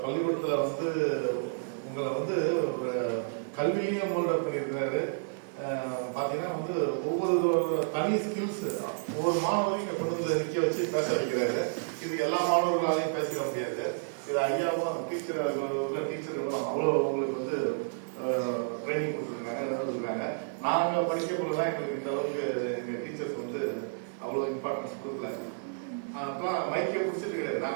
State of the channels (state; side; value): silent; left; digital silence